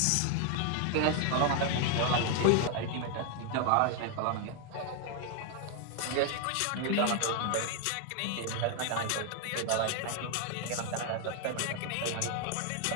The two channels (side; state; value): both; different; correlation 0.00